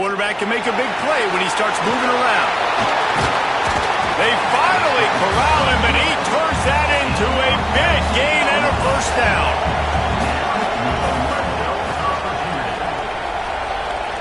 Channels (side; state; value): both; identical; correlation 1.00